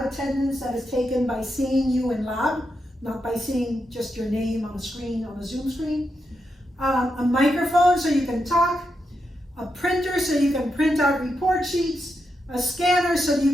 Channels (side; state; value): both; normal; correlation 0.85